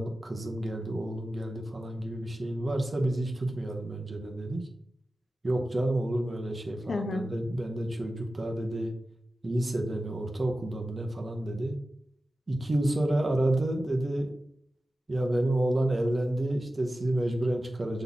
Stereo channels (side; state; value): both; normal; correlation 0.94